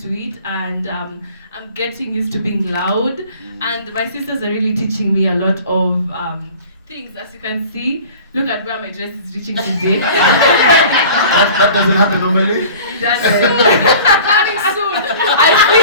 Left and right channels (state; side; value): inverted; both; correlation -0.44